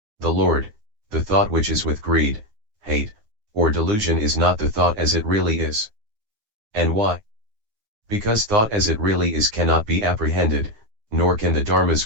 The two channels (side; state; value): left; late; 9.6 ms